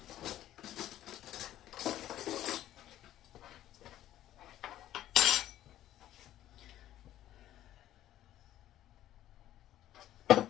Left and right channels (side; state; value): right; quieter; 13.0 dB